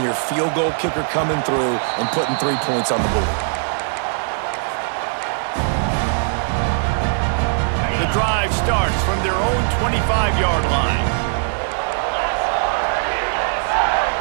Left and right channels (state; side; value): silent; left; digital silence